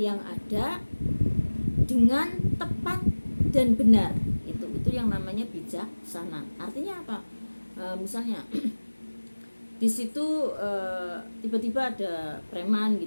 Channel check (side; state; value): both; inverted; correlation -1.00